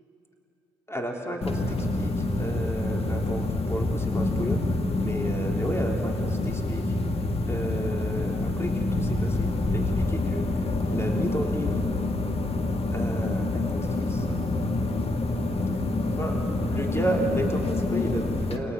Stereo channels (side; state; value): both; normal; correlation 0.79